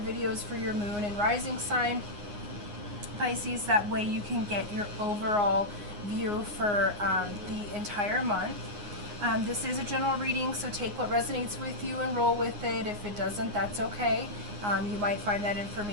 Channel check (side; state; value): left; late; 9.6 ms